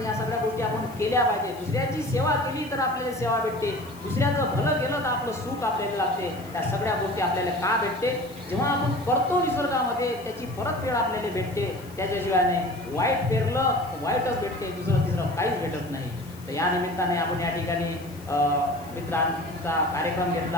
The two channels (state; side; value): noise; left; hiss, 22 dB below the sound